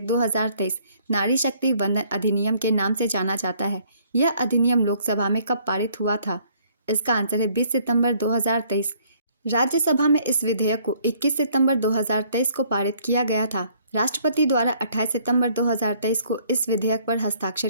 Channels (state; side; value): inverted; both; correlation -0.62